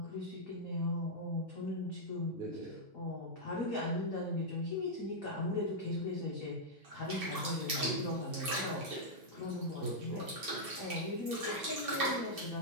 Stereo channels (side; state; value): both; normal; correlation -0.06